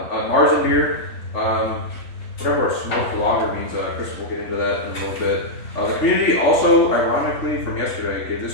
A Marzen beer. Whatever a smoked lager means. Chris will get into that in a little bit. The community also, ironically, from yesterday, gave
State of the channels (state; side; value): late; right; 3.5 ms